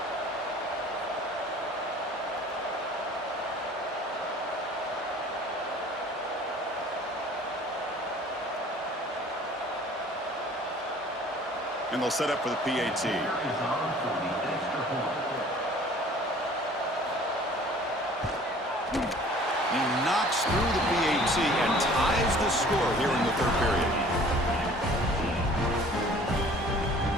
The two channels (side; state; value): both; normal; correlation 0.50